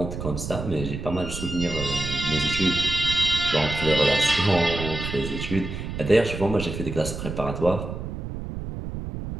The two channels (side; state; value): right; noise; rumble, 7 dB below the sound